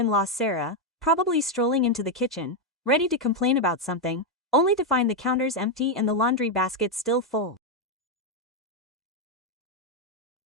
Sarah, probably strolling into the kitchen, ready to complain about something, only to find the counters empty and the laundry basket still full.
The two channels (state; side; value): normal; both; correlation 0.03